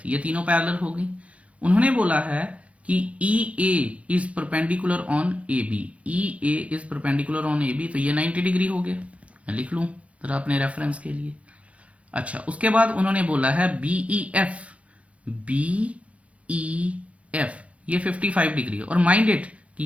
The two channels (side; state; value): left; late; 0.064 ms